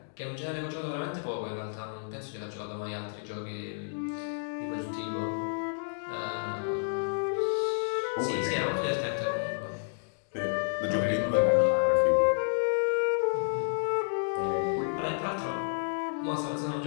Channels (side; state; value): right; silent; digital silence